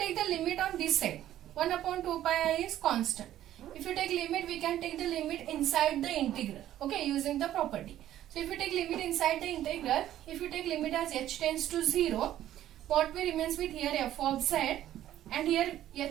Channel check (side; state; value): left; quieter; 12.6 dB